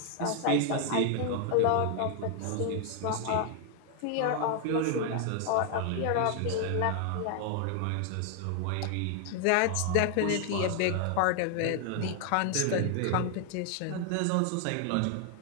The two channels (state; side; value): different; both; correlation 0.00